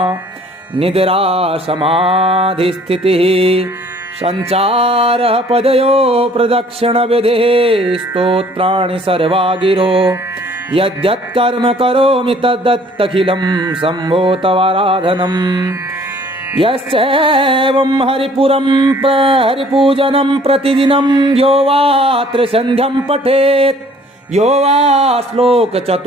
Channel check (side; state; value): both; normal; correlation 0.56